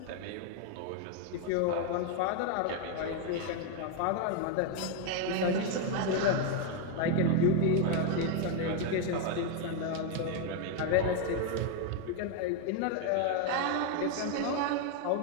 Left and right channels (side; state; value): both; different; correlation 0.01